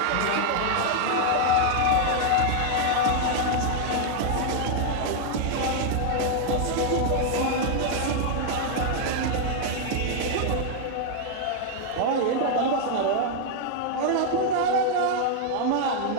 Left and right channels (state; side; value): different; both; correlation 0.00